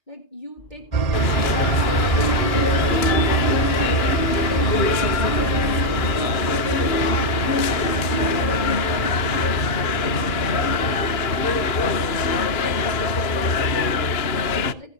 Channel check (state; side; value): late; right; 2.4 ms